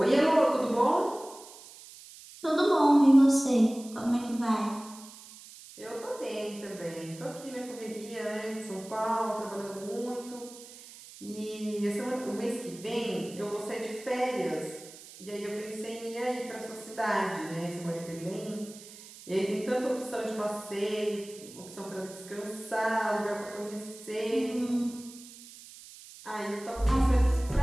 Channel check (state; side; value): noise; right; hiss, 18 dB below the sound